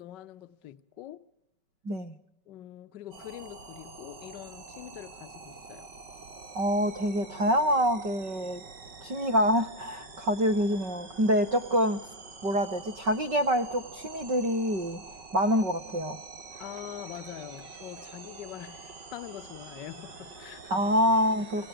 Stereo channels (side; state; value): left; late; 5.3 ms